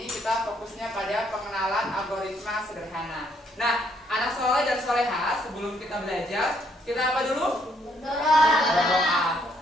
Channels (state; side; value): normal; both; correlation 0.70